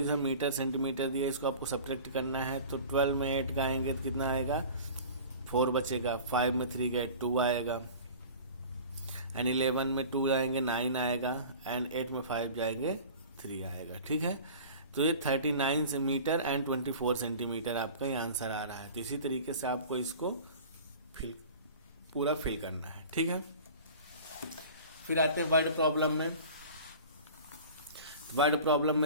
मीटर सेंटीमीटर दिया, इसको आपको सब्ट्रैक्ट करना है। तो 12 में 8 का आएंगे तो कितना आएगा? 4 बचेगा। 5 में 3 गए 2 आएगा। एंड 11 में 2 आएंगे 9 आएगा। एंड 8 में 5 जाएंगे 3 आएगा। ठीक है, तो ये 39 मीटर एंड 24 सेंटीमीटर आपका ये आंसर आ रहा है। तो इसी तरीके से आपको इसको पूरा फिल करना है। ठीक है, फिर आते हैं वर्ड प्रॉब्लम में। वर्ड प्रॉब्लम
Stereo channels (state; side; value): inverted; both; correlation -0.40